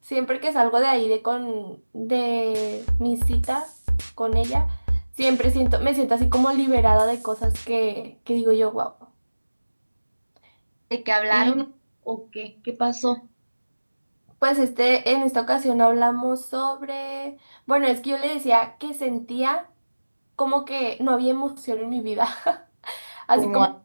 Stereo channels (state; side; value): inverted; both; correlation -1.00